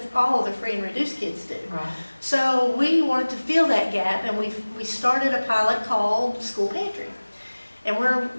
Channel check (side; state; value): both; inverted; correlation -1.00